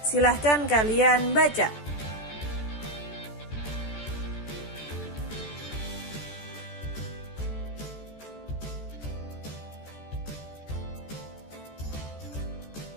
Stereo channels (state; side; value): late; right; 14 ms